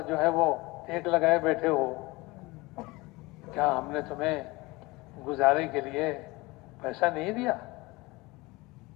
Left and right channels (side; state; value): right; quieter; 22.6 dB